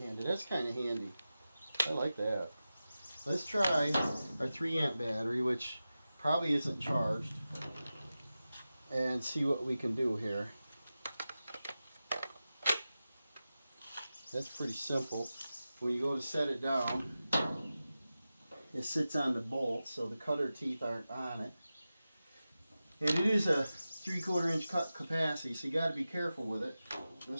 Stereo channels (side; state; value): both; inverted; correlation -0.94